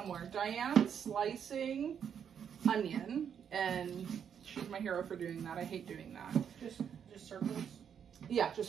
Diane's slicing onion, and she's my hero for doing that. I hate doing that. Just circles. Yeah, just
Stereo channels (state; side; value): quieter; left; 8.0 dB